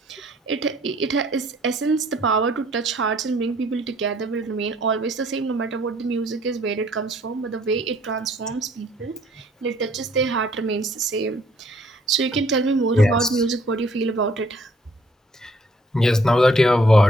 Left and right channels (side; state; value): both; normal; correlation 0.62